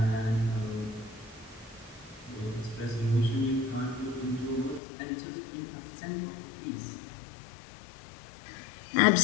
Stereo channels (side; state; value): right; drops out; at 4.8 s